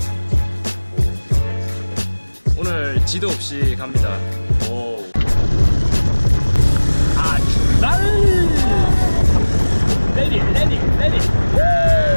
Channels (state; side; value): inverted; both; correlation -1.00